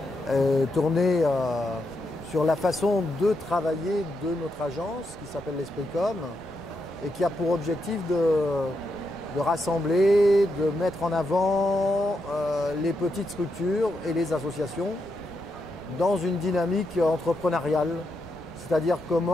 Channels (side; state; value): both; normal; correlation 0.83